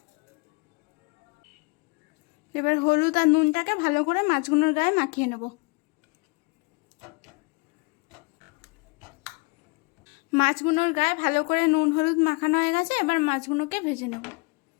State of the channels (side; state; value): right; quieter; 29.3 dB